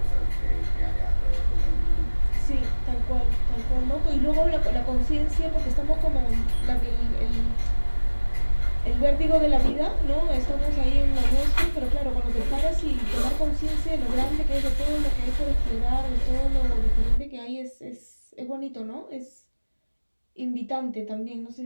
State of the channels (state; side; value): inverted; both; correlation -1.00